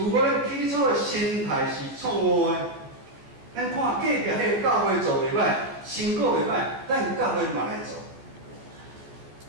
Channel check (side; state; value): left; late; 14 ms